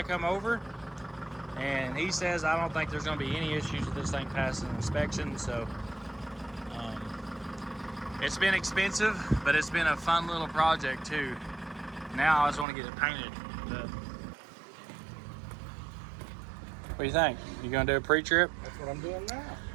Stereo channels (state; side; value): drops out; left; at 12.7 s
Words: come over. And he says, I don't think there's going to be any issues with this thing passing inspection. So it's been expensive, but it's been a fun little project too. Now I just want to get it painted. But what do you think? You going to do a pre-trip? That's what I'm doing now.